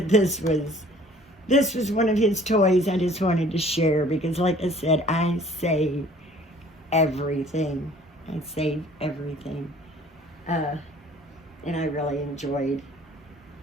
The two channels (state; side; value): normal; both; correlation 0.53